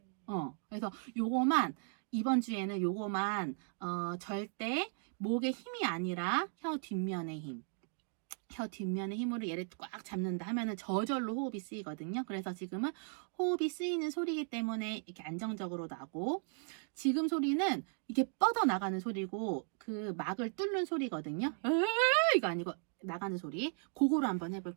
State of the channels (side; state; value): left; silent; 53 dB below the other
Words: 그래서 요거만 이번 주에는 요거만 절대 목의 힘이 아니라 혀 뒷면의 힘. 혀 뒷면의 힘으로 얘를 꽉 잡는다 하면은 저절로 호흡이 쓰이거든요. 그래서 지금은 호흡이 쓰이는 소리이기 때문에 이렇게 안정적으로 나고, 지금 소리는 이게 뻗어 나가는 소리고 그 막을 뚫는 소리거든요. 이거 아니고 나가는 소리. 그거로 한번